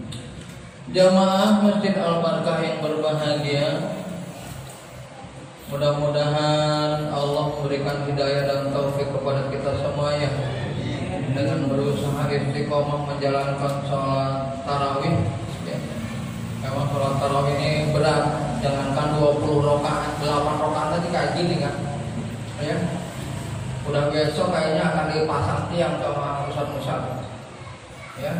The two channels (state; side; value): identical; both; correlation 1.00